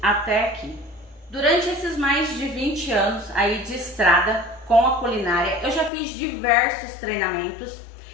até aqui. Durante esses mais de 20 anos aí de estrada com a culinária, eu já fiz diversos treinamentos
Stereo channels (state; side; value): drops out; right; at 5.9 s